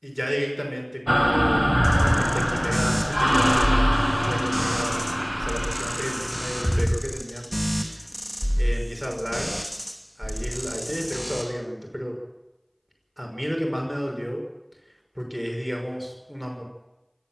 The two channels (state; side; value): identical; both; correlation 1.00